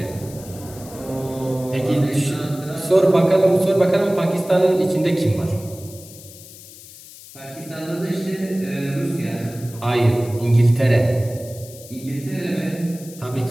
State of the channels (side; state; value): left; noise; hiss, 18 dB below the sound